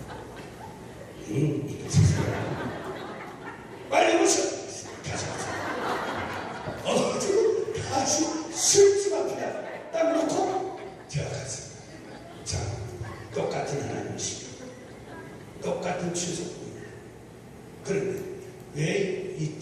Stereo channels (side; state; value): both; identical; correlation 1.00